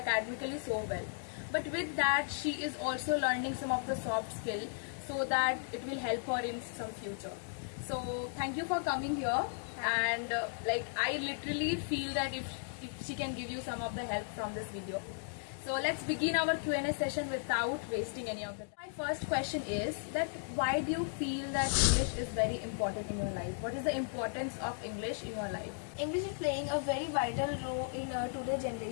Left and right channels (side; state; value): right; silent; digital silence